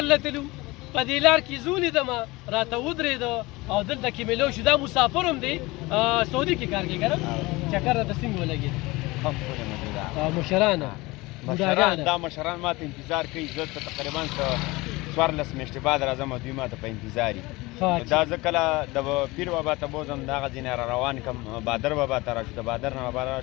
لتلو، په دې لار کې زه ولیدمه، راته ودرېده او دلته کې مې لو شو. دا مسافر هم دی، سعودي کې کار کوي که نه؟ چکر راته څنګه ولګېد؟ مشران دا مشران ما ته انتظار کوي. زه ته تقریبا 14 میاشتې بعد راځم او دوی ما ته په انتظار دي. دا زه کله د پیر بابا ته بوځم، د هغه ځینې را روان کړم، بادر بابا ته راشو، د بادر نه بابا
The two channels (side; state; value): right; quieter; 22.0 dB